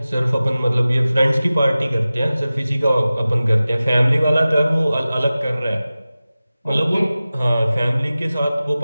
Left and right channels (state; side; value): inverted; both; correlation -0.96